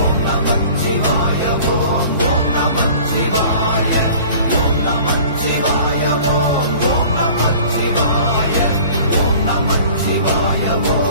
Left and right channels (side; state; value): both; inverted; correlation -0.46